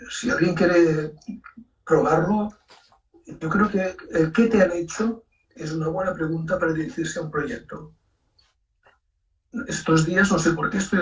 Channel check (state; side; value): identical; both; correlation 1.00